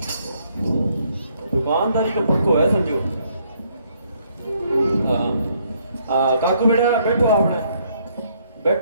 दुकानदारी का पक्को है समझो। काकू बेटा बैठो आपने,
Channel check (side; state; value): both; inverted; correlation -0.69